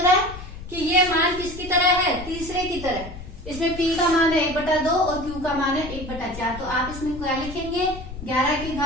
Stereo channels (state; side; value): noise; left; rumble, 12 dB below the sound